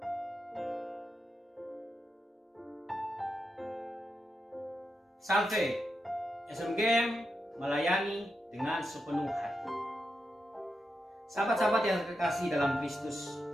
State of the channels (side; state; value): both; normal; correlation 0.87